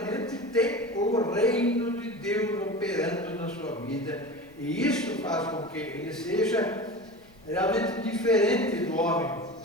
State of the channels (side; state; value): left; noise; rumble, 29 dB below the sound